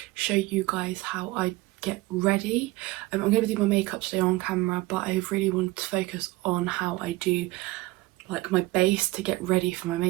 show you guys how I get ready. I'm going to do my makeup today on camera, but I really want to focus on how I do like my base to get ready for my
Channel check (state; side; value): quieter; left; 20.0 dB